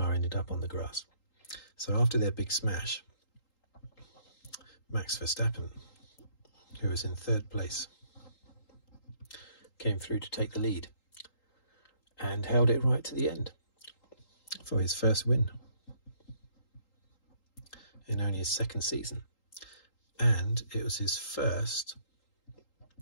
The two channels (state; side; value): late; right; 3.8 ms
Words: ended up on the grass. So after their big smash, Max Verstappen, who was in third place, came through to take the lead and held it right to the end for his first win in only his second season. And it was his first